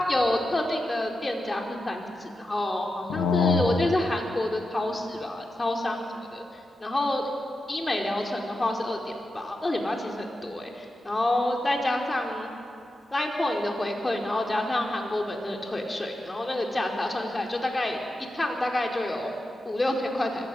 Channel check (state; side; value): normal; both; correlation 0.89